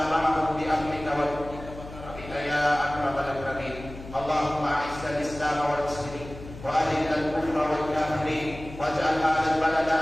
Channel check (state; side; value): noise; left; hum, 14 dB below the sound